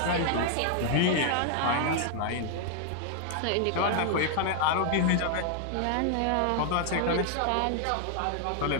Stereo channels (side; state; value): both; different; correlation 0.00